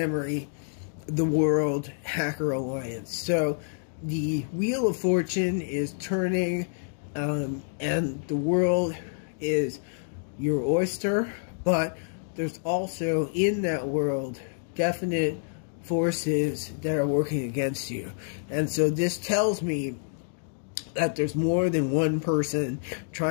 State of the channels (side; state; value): right; silent; digital silence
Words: the World Hacker Alliance. So the Wheel of Fortune is turning, and the world is your oyster, but there's also in that world definite forces that are working against you. And so this tells me that there's more than one person